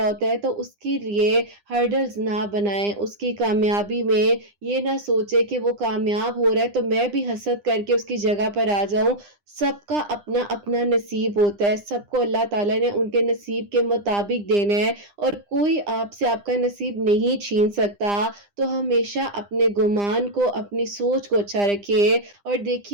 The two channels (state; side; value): late; left; 9.9 ms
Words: ہوتا ہے تو اس کے لیے ہرڈلز نہ بنائیں. اس کی کامیابی میں یہ نہ سوچے کہ وہ کامیاب ہو رہا ہے تو میں بھی حسد کر کے اس کی جگہ پر آ جاؤں. سب کا اپنا اپنا نصیب ہوتا ہے, سب کو اللہ تعالیٰ نے ان کے نصیب کے مطابق دینا ہے اور کوئی آپ سے آپ کا نصیب نہیں چھین سکتا. تو ہمیشہ اپنے گمان کو اپنی سوچ کو اچھا رکھیے. اور